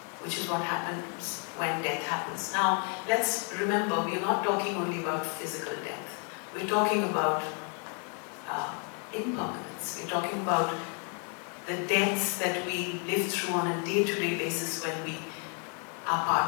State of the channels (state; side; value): quieter; right; 39.9 dB